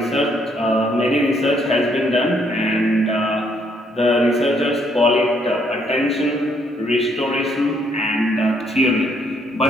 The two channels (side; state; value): both; normal; correlation 0.70